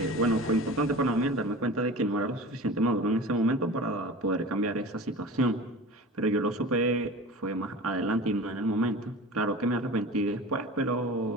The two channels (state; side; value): normal; both; correlation 0.35